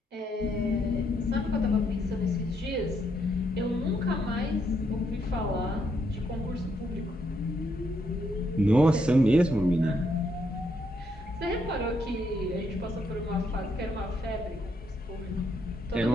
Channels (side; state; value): both; normal; correlation 0.76